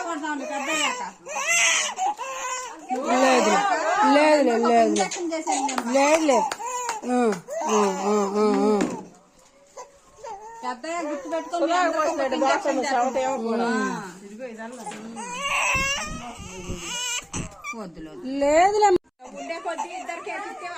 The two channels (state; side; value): identical; both; correlation 1.00